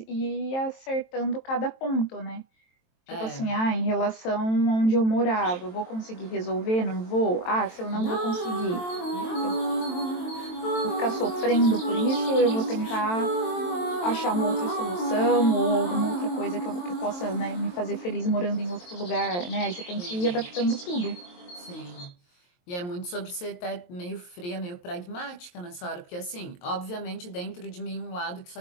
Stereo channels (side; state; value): right; late; 23 ms